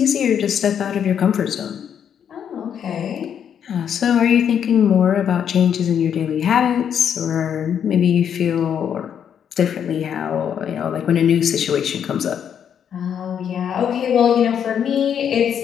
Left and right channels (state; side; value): quieter; right; 8.5 dB